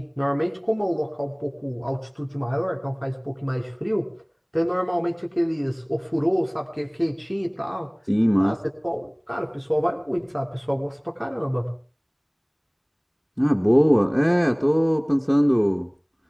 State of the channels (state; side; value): identical; both; correlation 1.00